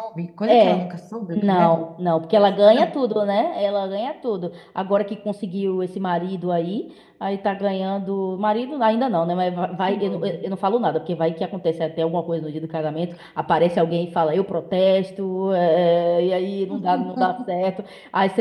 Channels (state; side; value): identical; both; correlation 1.00